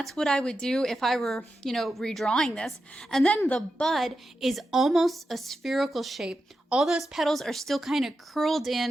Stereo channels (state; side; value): normal; both; correlation 0.89